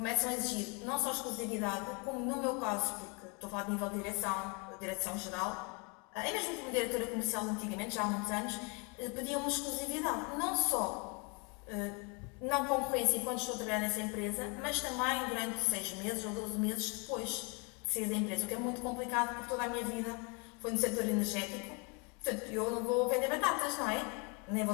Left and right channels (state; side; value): quieter; right; 32.7 dB